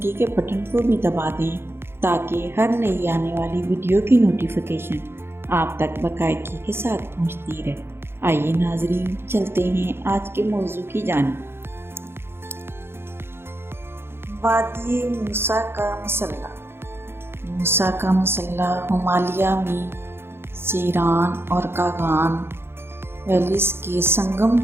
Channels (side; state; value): left; late; 0.11 ms